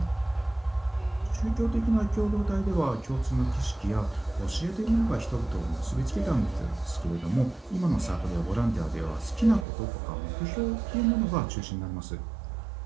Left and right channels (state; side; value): drops out; left; at 9.7 s